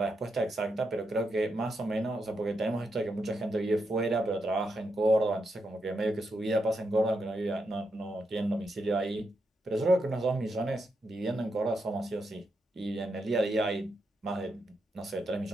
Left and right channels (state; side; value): normal; both; correlation 0.83